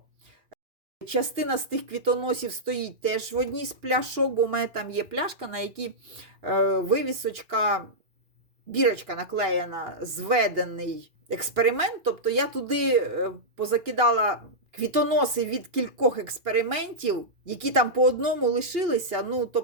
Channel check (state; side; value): late; left; 2.4 ms